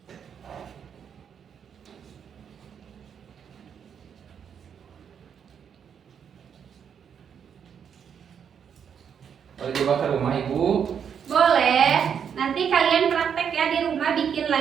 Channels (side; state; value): left; quieter; 7.7 dB